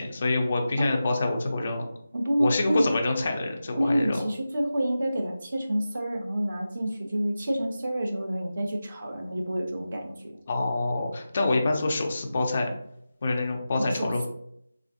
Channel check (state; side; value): inverted; both; correlation -0.93